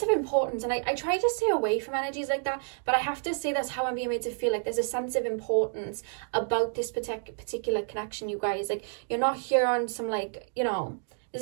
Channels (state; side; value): silent; left; digital silence